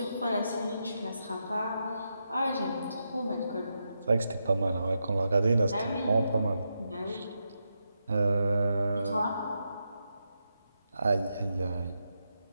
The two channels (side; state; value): both; inverted; correlation -0.85